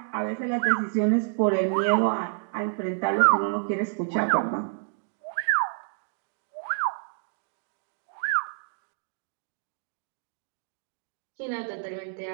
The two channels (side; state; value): left; silent; 59 dB below the other